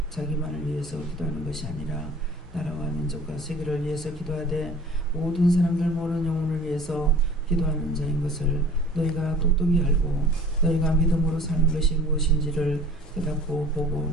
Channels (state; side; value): normal; both; correlation 0.45